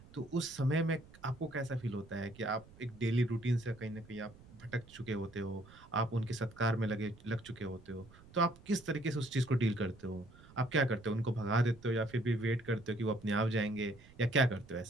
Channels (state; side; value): noise; right; rumble, 22 dB below the sound